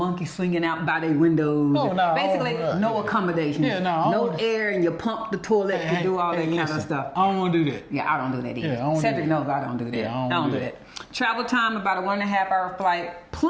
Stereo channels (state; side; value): identical; both; correlation 1.00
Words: swinging out by their windows. Basically, no accommodations. No air, and you pump the toilet to do all that kind of stuff. I don't want to do that. Yeah, I don't do that either. Cedric knows I don't do that. Yeah, I don't do that. Travel time, about a 1.5 hour flight,